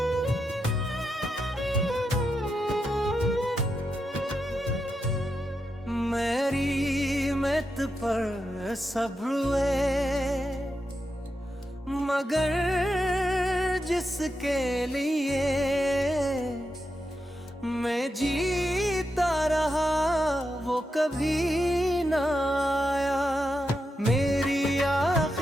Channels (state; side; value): normal; both; correlation 0.86